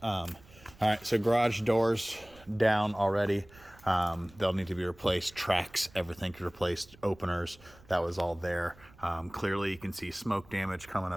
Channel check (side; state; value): right; noise; rumble, 24 dB below the sound